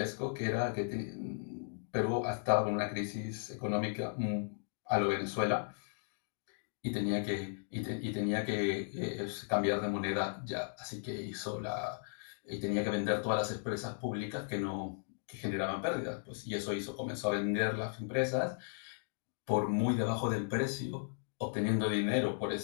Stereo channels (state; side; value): silent; right; digital silence